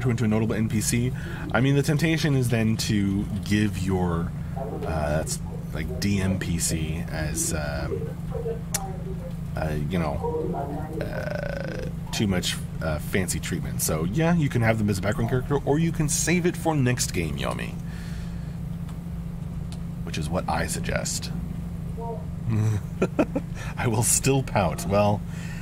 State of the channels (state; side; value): identical; both; correlation 1.00